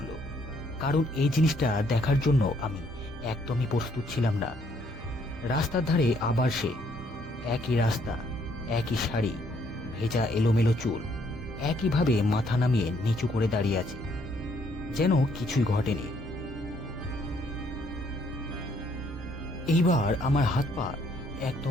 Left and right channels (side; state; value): both; normal; correlation 0.68